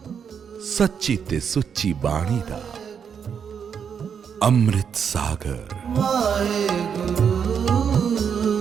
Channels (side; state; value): left; quieter; 7.2 dB